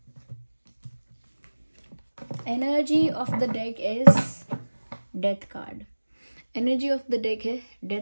Energy of the deck is Death card. Energy of the deck है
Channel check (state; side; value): inverted; both; correlation -1.00